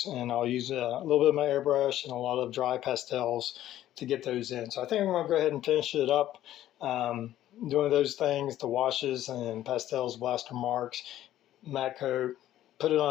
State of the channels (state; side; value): quieter; right; 13.0 dB